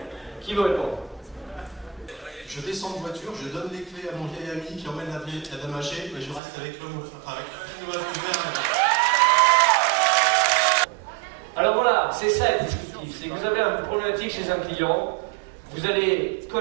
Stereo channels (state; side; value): drops out; left; at 6.4 s